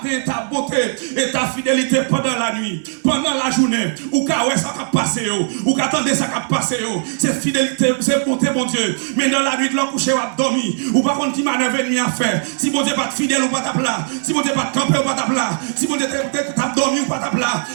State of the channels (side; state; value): left; silent; digital silence